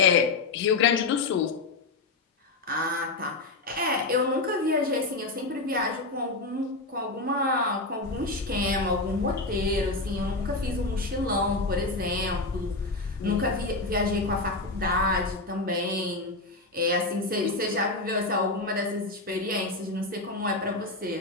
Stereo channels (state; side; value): quieter; right; 3.2 dB